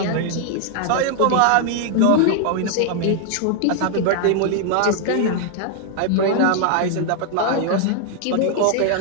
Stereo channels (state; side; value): different; both; correlation 0.00